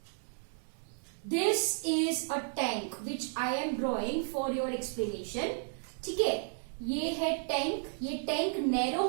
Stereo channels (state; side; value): silent; left; 56 dB below the other